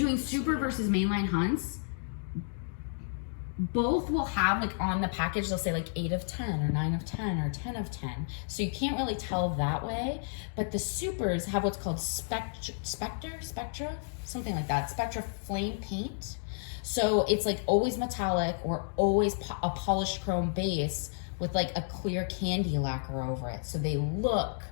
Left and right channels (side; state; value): right; silent; digital silence